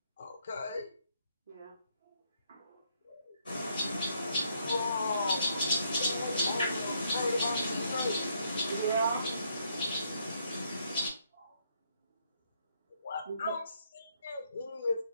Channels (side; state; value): both; inverted; correlation -0.72